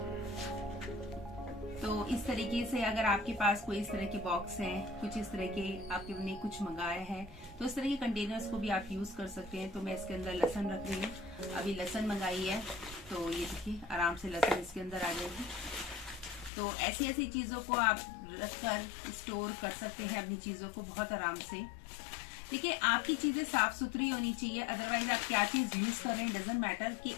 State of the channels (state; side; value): drops out; right; at 16.5 s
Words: तो इस तरीके से अगर आपके पास कोई इस तरह के बॉक्स हैं, कुछ इस तरह के आपने कुछ मंगाया है, तो इस तरह के कंटेनर्स को भी आप यूज कर सकते हैं। तो मैं इसके अंदर लहसुन रख रही हूँ, अभी लहसुन मंगाई है, तो ये देखिए आराम से लहसुन इसके अंदर आ जाएगी। तो ऐसी ऐसी चीजों को आप रखकर स्टोर कर सकते हैं अपनी चीजों को बहुत आराम से। देखिए आपकी चीजें साफ सुथरी होनी चाहिए, अदरवाइज आप क्या चीज यूज कर रहे हैं डजंट मैटर। कि